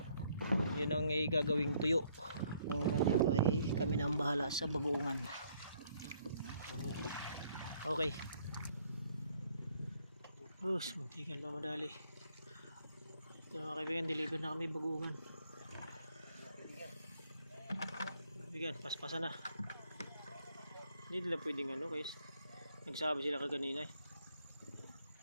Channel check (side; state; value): both; inverted; correlation -0.67